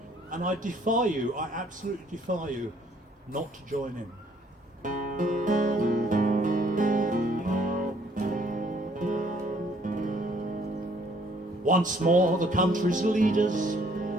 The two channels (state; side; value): normal; both; correlation 0.63